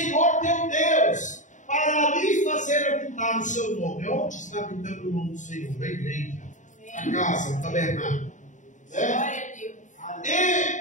teu Deus, para ali fazer habitar o seu nome. Onde está habitando o nome do Senhor? A igreja, a casa, o tabernáculo.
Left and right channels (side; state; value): right; late; 0.36 ms